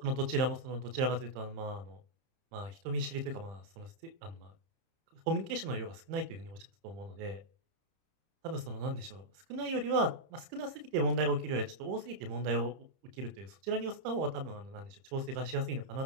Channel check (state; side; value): late; left; 30 ms